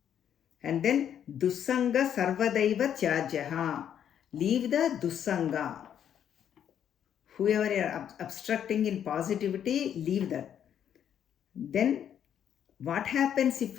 And then, Dussanga Sarvadaiva Tyajaha. Leave the Dussanga. Whoever you are obstructing in positivity, leave that. Then, what happens if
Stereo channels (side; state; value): right; quieter; 9.3 dB